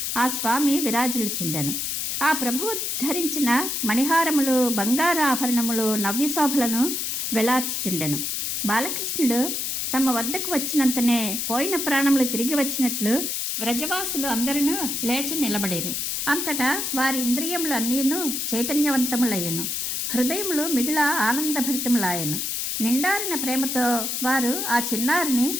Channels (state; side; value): noise; left; hiss, 1 dB below the sound